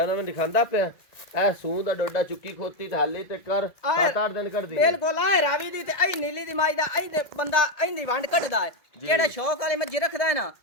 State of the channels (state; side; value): late; right; 1.9 ms